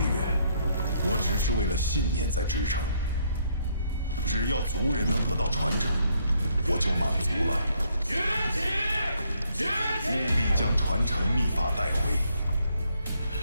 我只是为了信念在支撑。只要族人能得到传承，我就满足了。崛起！崛起！务必将传承秘法带回。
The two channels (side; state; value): both; inverted; correlation -0.71